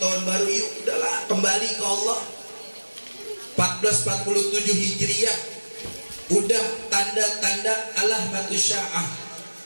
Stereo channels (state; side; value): inverted; both; correlation -1.00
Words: tahun baru, yuk udahlah kembali ke Allah. 1447 Hijriah, udah tanda-tanda alamatus sya'ah,